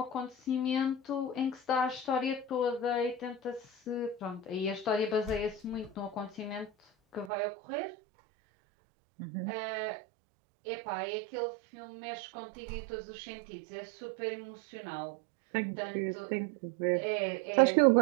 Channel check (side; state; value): left; drops out; at 7.3 s